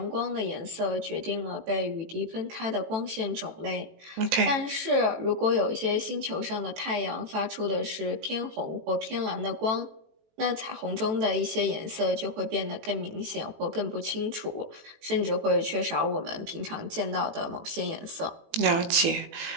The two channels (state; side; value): late; left; 18 ms